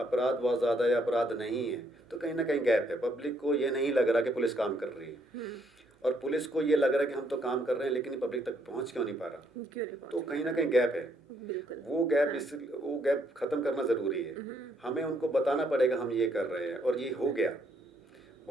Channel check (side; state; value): both; normal; correlation 0.70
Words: बहुत ज़्यादा या अपराध नहीं है, तो कहीं ना कहीं गैप है। पब्लिक को ये नहीं लग रहा कि पुलिस काम कर रही है, और पुलिस को ये लग रहा है कि हम तो काम कर रहे हैं, लेकिन ये पब्लिक तक पहुंच क्यों नहीं पा रहा। क्यों नहीं तो पहुंच कहीं ना कहीं गैप है। बिल्कुल। वो गैप खत्म करना जरूरी है। हमें उनको बताना पड़ेगा हम ये कर रहे हैं, और ये हो गया।